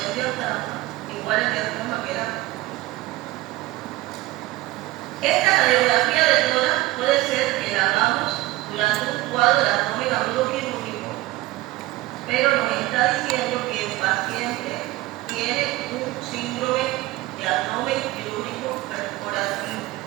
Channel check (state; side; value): quieter; left; 18.7 dB